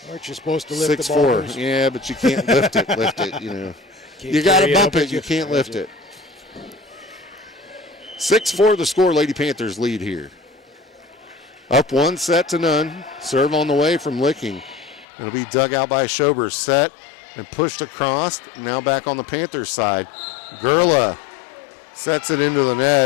Aren't you supposed to lift the ball? 6-4. Yeah, but you can't lift it, you know. You got to bump it, you can't lift it. 6-4 the score. Lady Panthers lead here. Up 1 set to none. Serve on the way from Licking. It'll be dug out by Schober. Set and pushed across. Now back on the Panthers side. Gurlow sets it into the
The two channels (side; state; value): right; drops out; at 15.1 s